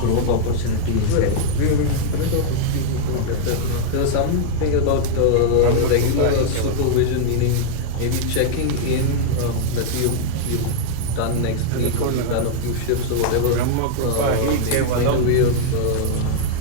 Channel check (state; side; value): different; both; correlation -0.01